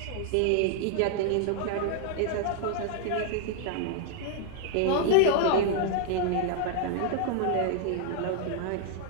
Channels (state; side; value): different; both; correlation -0.01